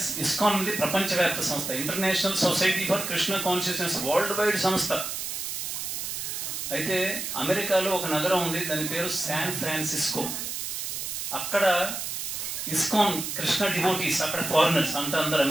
ఇస్కాన్ అనేది ప్రపంచవ్యాప్త సంస్థ. International society for Krishna consciousness world wide సంస్థ. అయితే అమెరికాలో ఒక నగరం ఉంది, దాని పేరు శాన్ ఫ్రాన్సిస్కో. అక్కడ ఇస్కాన్ కృష్ణ డివోటీస్, అక్కడ ఫారినర్స్ అంటే అందరు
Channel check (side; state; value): right; noise; hiss, 4 dB below the sound